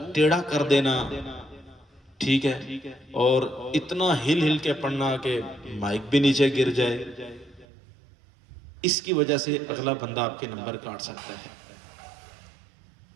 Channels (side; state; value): left; drops out; at 7.7 s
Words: ٹیڑھا کر دینا، ٹھیک ہے، اور اتنا ہل ہل کے پڑھنا کہ مائک بھی نیچے گر جائے، اس کی وجہ سے اگلا بندہ آپ کے نمبر کاٹ سکتا ہے۔